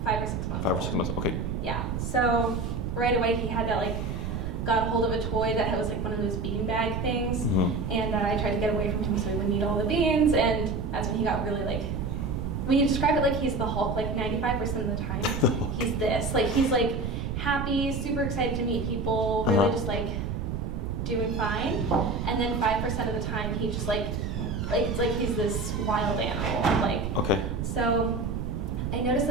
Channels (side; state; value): right; noise; rumble, 3 dB below the sound